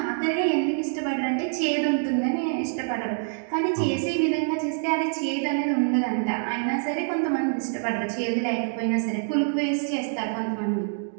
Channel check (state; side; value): silent; left; digital silence